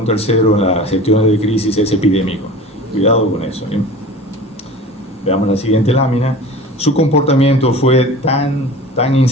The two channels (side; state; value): both; normal; correlation 0.39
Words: tercero en las gestiones de crisis es epidémico. Cuidado con eso, ¿eh? Veamos la siguiente lámina. Su comportamiento fue tan